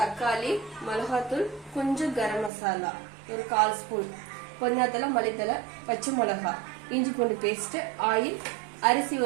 மிளகாத்தூள், கொஞ்சம் கரம் மசாலா, ஒரு 1/4 ஸ்பூன், பொன்னாத்தலை, மல்லித்தலை, பச்சை மிளகாய், இஞ்சி பூண்டு பேஸ்ட், ஆயில், அரிசி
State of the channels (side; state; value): left; drops out; at 2.5 s